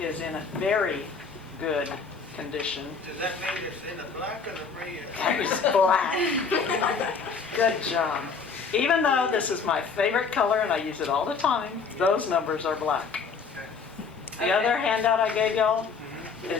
is in a very good condition. Does that mean it's in the black or the red? It's black. Good job. Even though this is my favorite color and I use it all the time, those numbers are black. The other handout I gave y'all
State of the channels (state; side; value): quieter; right; 5.2 dB